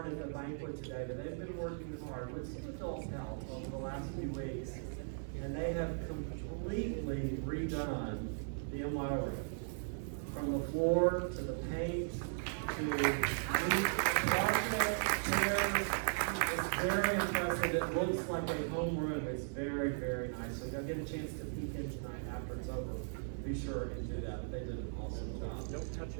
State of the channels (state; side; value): silent; left; digital silence